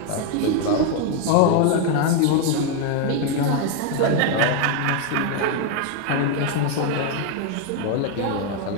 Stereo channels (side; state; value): both; different; correlation 0.01